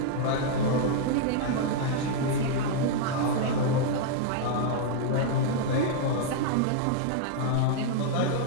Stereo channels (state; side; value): different; both; correlation -0.01